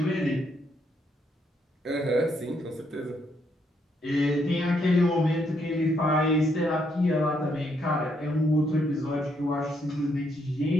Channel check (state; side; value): normal; both; correlation 0.74